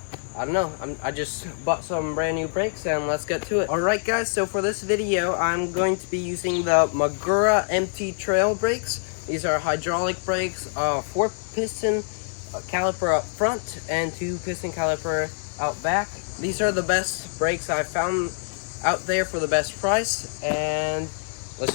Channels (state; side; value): silent; right; 62 dB below the other